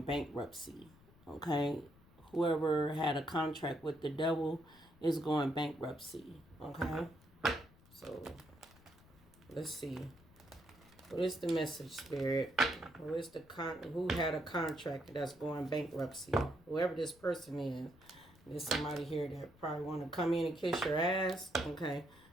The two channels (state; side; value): noise; left; rumble, 25 dB below the sound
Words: bankruptcy. Okay, whoever had a contract with the devil is going bankruptcy. Okay, so let's see. What is the message, Spirit? Who is who had a contract that's going bankruptcy? Whoever this person is. There's somebody here that probably want to come in and kiss your ass. Okay.